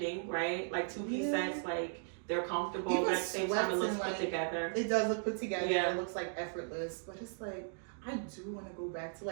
right? Like two-piece Yeah. sets, like they're comfortable, Even but at the same time it sweats looks and, put like, together. it does look put together. Yeah. It looks like effortless, but it's like, I do want to go back to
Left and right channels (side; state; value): left; silent; digital silence